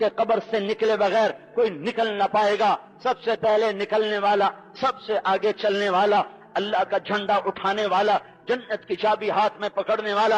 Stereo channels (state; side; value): identical; both; correlation 1.00